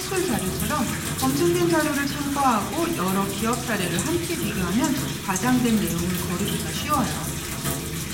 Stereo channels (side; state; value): both; identical; correlation 1.00